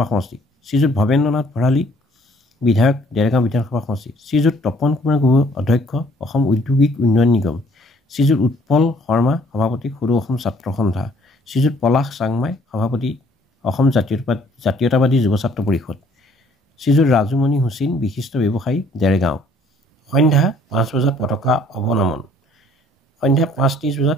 সমষ্টি শ্ৰীযুত ভৱেন্দ্ৰনাথ ভৰালী বিধায়ক ডেৰগাঁও বিধানসভা সমষ্টি শ্ৰীযুত তপন কুমাৰ গগৈ অধ্যক্ষ অসম ঔদ্যোগিক উন্নয়ন নিগম শ্ৰীযুত উৎপল শৰ্মা সভাপতি সৰু অসম ছাত্ৰ সন্থা শ্ৰীযুত পলাশ চাংমাই সভাপতি অসম জাতীয়তাবাদী যুৱ ছাত্ৰ পৰিষদ শ্ৰীযুত ৰাজুমণি হুছেইন বিশিষ্ট ব্যৱসায়ী ডেৰগাঁও সন্ধ্যা 5 বজাত পতাকা অৱনমন সন্ধ্যা 5:30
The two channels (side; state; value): both; normal; correlation 0.60